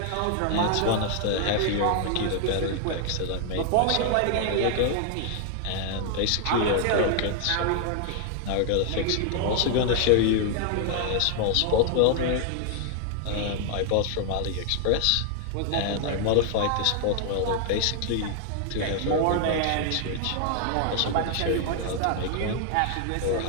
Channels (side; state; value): both; different; correlation 0.00